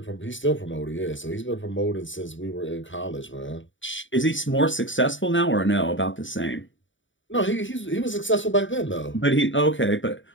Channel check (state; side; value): late; right; 0.56 ms